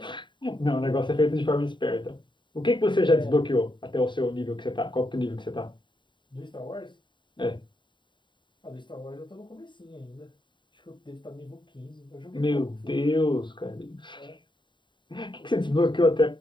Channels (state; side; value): late; right; 0.23 ms